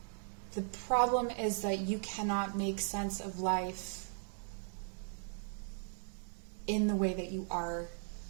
the problem is that you cannot make sense of life in the way that you are,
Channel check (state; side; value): silent; left; 53 dB below the other